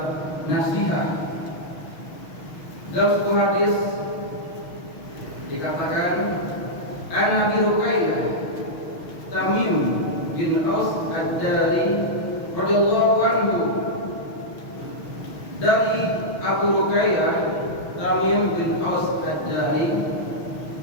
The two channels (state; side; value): late; right; 6.4 ms